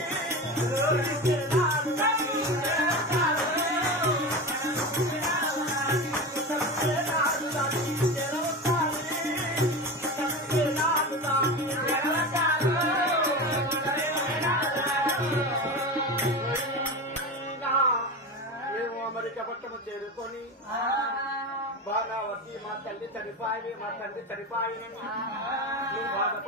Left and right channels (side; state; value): both; normal; correlation 0.25